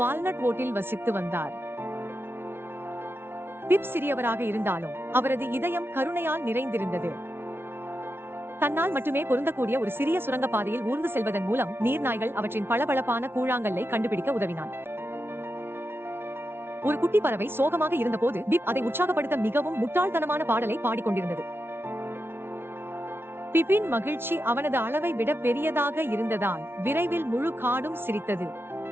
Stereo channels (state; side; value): late; left; 0.11 ms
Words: ஓட்டில் வசித்து வந்தார். பிப் சிறியவராக இருந்தாலும் அவரது இதயம் கருணையால் நிறைந்திருந்தது. தன்னால் மட்டுமே பொருந்தக்கூடிய ஒரு சிறிய சுரங்கப்பாதையில் ஊர்ந்து செல்வதன் மூலம் நீர்நாய்கள் அவற்றின் பளபளப்பான கூழாங்கல்லை கண்டுபிடிக்க உதவினான். ஒரு குட்டி பறவை சோகமாக இருந்தபோது பிப் அதை உற்சாகப்படுத்த மிகவும் முட்டாள்தனமான பாடலை பாடிக்கொண்டிருந்தது. பிப்பின் மகிழ்ச்சி அவனது அளவை விட பெரியதாக இருந்ததால் விரைவில் முழு காடும் சிரித்தது.